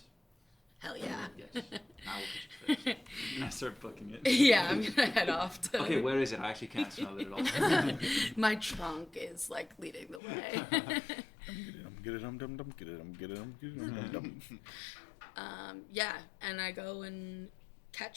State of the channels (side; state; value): right; drops out; at 10.2 s